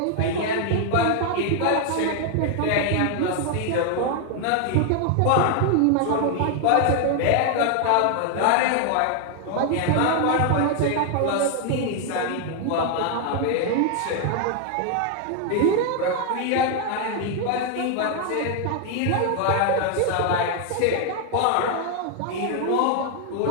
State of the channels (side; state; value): both; different; correlation 0.00